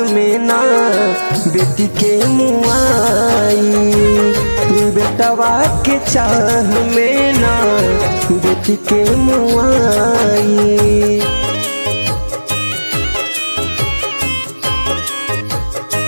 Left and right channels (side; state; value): both; inverted; correlation -1.00